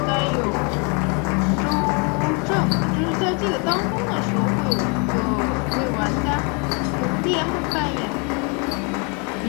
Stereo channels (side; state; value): right; quieter; 34.0 dB